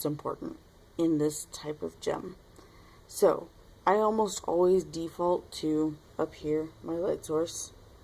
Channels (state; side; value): identical; both; correlation 1.00